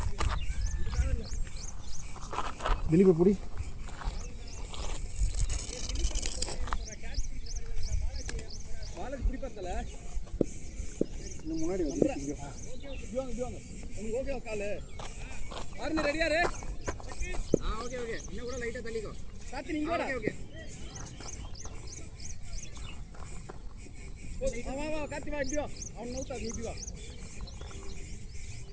திலீப் புடி. முன்னாடி வந்து ஓகே காலு ஆர்னி ரெடியா ரே? ஓகே இன்னும் கூட லைட்டா தள்ளிக்கோ. சாத்தி நீங்க கூட. ஓகே வா காத்தி வா இடியோ. அவன் நவுத்தா நீ வா.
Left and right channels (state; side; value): identical; both; correlation 1.00